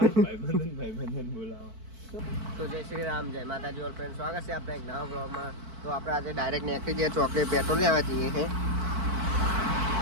બોલાવા. તો જય શ્રી રામ, જય માતાજી ઓલ ફ્રેન્ડ, સ્વાગત છે આપણે એક નવા બ્લોગમાં. તો આપણે આજે ડાયરેક્ટ નીકળી જઈએ ચોકડી પેટ્રોલ લેવા જઈએ છે.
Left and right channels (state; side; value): late; left; 4.5 ms